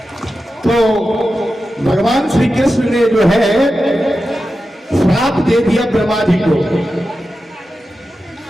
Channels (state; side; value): normal; both; correlation 0.92